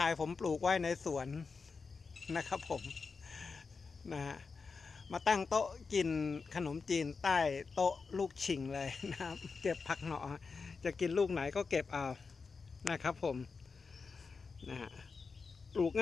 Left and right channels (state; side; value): quieter; right; 4.8 dB